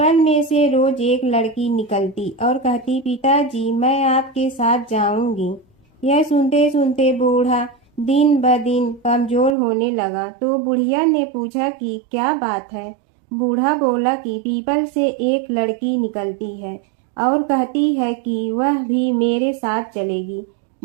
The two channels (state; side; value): drops out; left; at 9.6 s